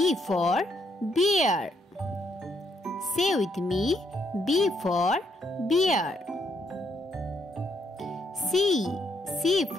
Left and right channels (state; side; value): normal; both; correlation 0.74